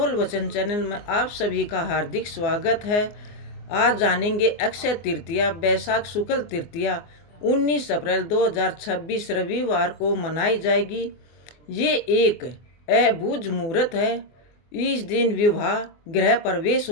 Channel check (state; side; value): late; right; 24 ms